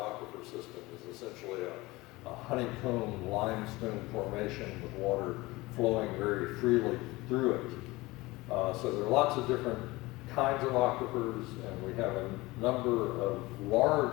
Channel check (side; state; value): right; quieter; 21.1 dB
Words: system is essentially a honeycomb limestone formation with water flowing very freely through it. So there are lots of different kinds of aquifers, and we have a number of